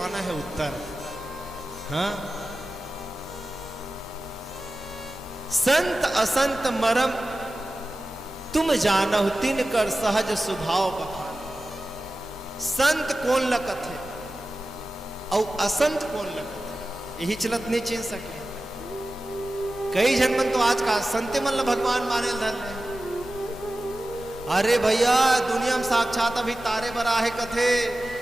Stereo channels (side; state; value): both; normal; correlation 0.95